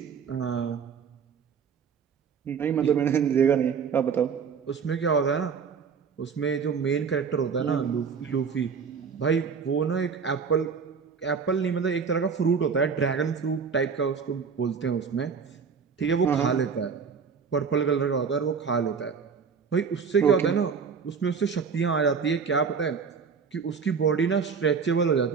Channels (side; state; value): left; quieter; 6.0 dB